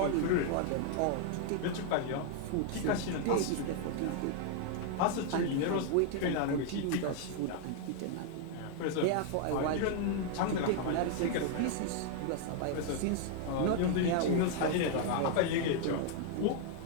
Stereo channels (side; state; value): both; different; correlation 0.00